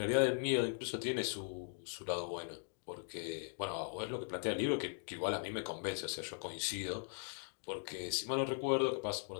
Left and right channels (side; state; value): right; silent; digital silence